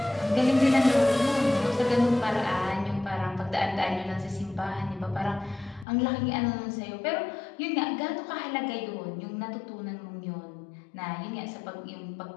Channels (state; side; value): drops out; right; at 5.9 s